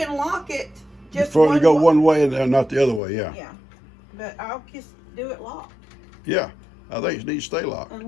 lock it just before you go one way and not the other way, yeah. Yeah. But I'll just do it locked. Yeah. I think it needs to stay locked.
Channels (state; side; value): drops out; right; at 3.0 s